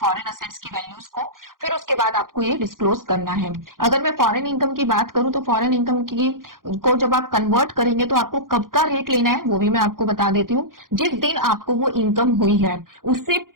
फॉरेन असेट्स की वैल्यूज को, फिर उसके बाद आपको ये डिस्क्लोज करना है। अगर मैं फॉरेन इनकम की बात करूं तो फॉरेन इनकम की को जब आप कन्वर्ट करेंगे तो आपको कब का रेट लेना है वो भी मैं आपको बता देती हूँ। जिस दिन आपको वो इनकम हुई है उससे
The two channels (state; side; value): late; left; 0.91 ms